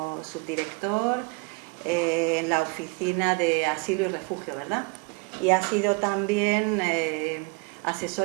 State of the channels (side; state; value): left; quieter; 29.2 dB